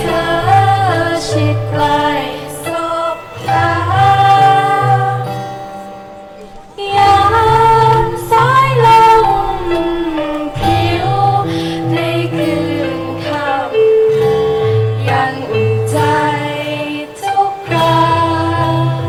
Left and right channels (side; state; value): both; identical; correlation 1.00